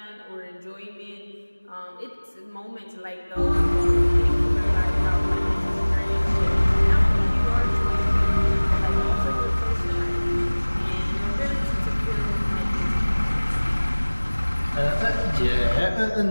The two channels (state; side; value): inverted; both; correlation -1.00